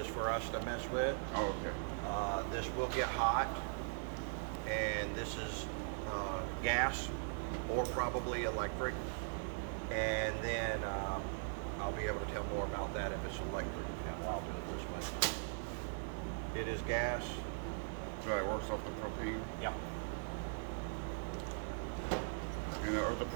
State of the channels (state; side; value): silent; left; digital silence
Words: for us to mess with. Oh, okay. This will get hot, and this is gas. or probably electric. And then I'll be able to tell more about that if it's electric panel. I'll do it this way. It is gas. So it works off the propane. Yep. And are the